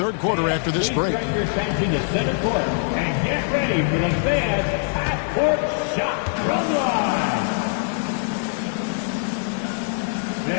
quarter after this break. Bring your attention to center court and get ready for the Fed half-court shot from line.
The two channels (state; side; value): silent; right; 64 dB below the other